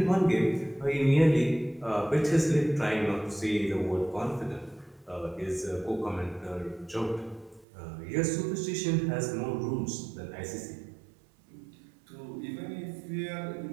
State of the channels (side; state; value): left; drops out; at 7.7 s